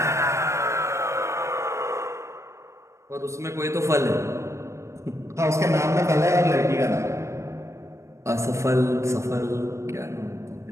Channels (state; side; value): late; left; 0.14 ms